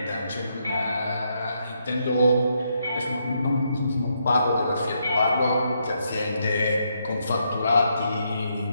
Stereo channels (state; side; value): inverted; both; correlation -0.78